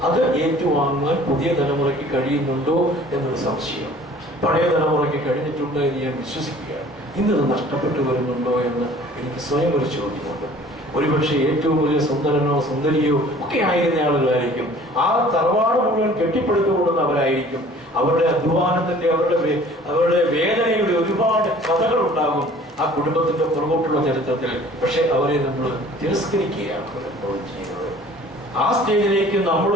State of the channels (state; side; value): normal; both; correlation 0.50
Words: അത് ഏറ്റുവാങ്ങാൻ പുതിയ തലമുറയ്ക്ക് കഴിയുന്നുണ്ടോ എന്നൊരു സംശയം. പഴയ തലമുറയ്ക്ക് കഴിഞ്ഞിട്ടുണ്ട് എന്ന് ഞാൻ വിശ്വസിക്കുകയാണ്. ഇന്നത് നഷ്ടപ്പെട്ടു വരുന്നുണ്ടോ എന്ന് എനിക്ക് സ്വയം ഒരു ചോദ്യമുണ്ട്. ഒരുപക്ഷെ ഏറ്റവും വലിയ സുന്ദരനോ സുന്ദരിയോ ഒക്കെ ആയിരുന്ന ആളുകളായിരിക്കും. ആ തറവാട് മുഴുവൻ കെട്ടിപ്പടുത്തുകൊള്ളുന്നവരായിരിക്കും. അവരുടെ അധ്വാനത്തിന്റെ അവരുടെ വേദനയുടെ ഒരുപാട് കഥകൾ ഉണ്ടാകും ആ കുടുംബത്തിന്റെ പുറകോട്ടുള്ള ചരിത്രത്തിൽ. പക്ഷെ അവരെ നമ്മൾ തിരസ്കരിക്കുകയാണ് ചെയ്യുന്നത്. ആ സ്റ്റേജിലേക്ക്